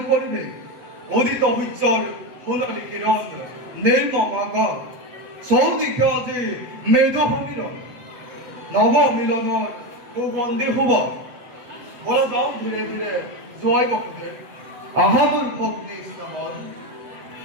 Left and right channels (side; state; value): left; late; 7.8 ms